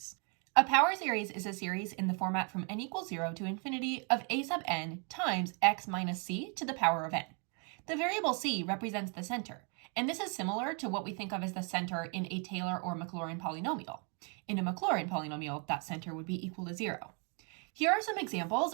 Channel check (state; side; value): quieter; left; 37.0 dB